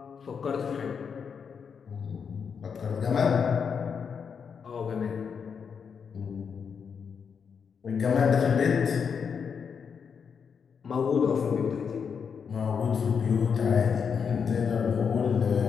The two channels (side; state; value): right; quieter; 6.5 dB